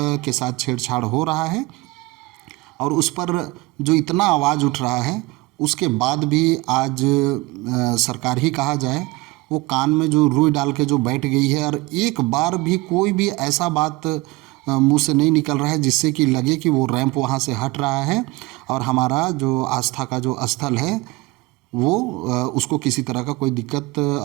के साथ छेड़छाड़ हो रहा है और उस पर जो इतना आवाज़ उठ रहा है उसके बाद भी आज सरकार ही कहा जाए वो कान में जो रुई डाल के जो बैठ गई है और एक बार भी कोई भी ऐसा बात मुंह से नहीं निकल रहा है जिससे कि लगे कि वो रैंप वहाँ से हट रहा है और हमारा जो आस्था का जो स्थल है वो उसको किसी तरह का कोई दिक्कत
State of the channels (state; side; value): quieter; left; 21.8 dB